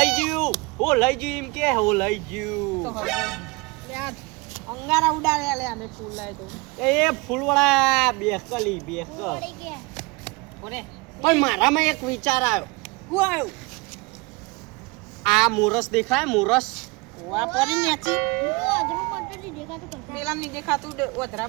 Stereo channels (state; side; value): quieter; left; 25.8 dB